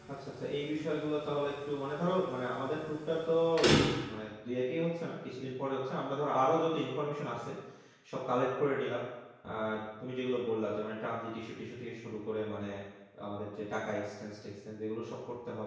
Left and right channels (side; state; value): both; identical; correlation 1.00